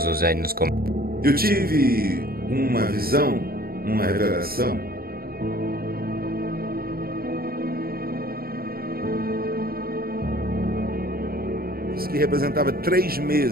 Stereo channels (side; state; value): left; late; 0.44 ms